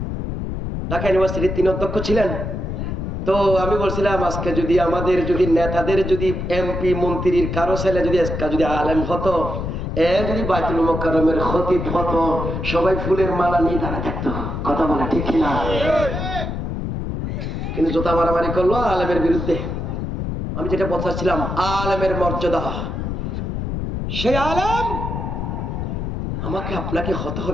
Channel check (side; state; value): left; noise; rumble, 4 dB below the sound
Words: ঢাকা ইউনিভার্সিটির 3 অধ্যক্ষ ছিলেন। তো আমি বলছিলাম, আজকে যদি আমাদের যদি নেতাদের যদি এমপি মন্ত্রীর কারো ছেলে যদি আলেম হতো, যদি বাইতুল মুকাররমের খতিব হতো, সবাই ফুলের মালা নিয়ে দাঁড়া থাকতো। কথা বলে ঠিক কিনা? কিন্তু জোতা মারামারি করলো আলেমের বিরুদ্ধে। আমি যেটা বলছিলাম, আলেমের মর্যাদা, সেই আলেম আমাকে আপনাকে হতে